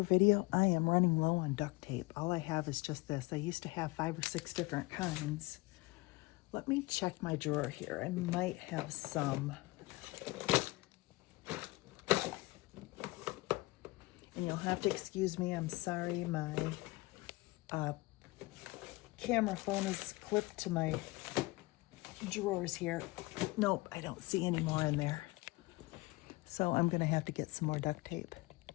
video, I am running low on duct tape. All I have is just this. I used to have 5 or 6 different kinds. Let me check my drawer here. I might have some. And you'll have to excuse me. I'm sorry. My camera phone is clipped to my drawers here. Nope, I don't see any more in there. So I'm going to have to get some more duct tape.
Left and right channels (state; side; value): quieter; right; 22.5 dB